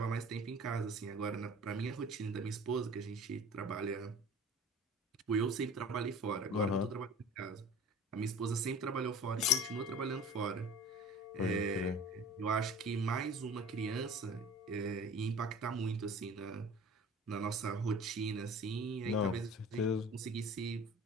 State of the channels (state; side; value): normal; both; correlation 0.43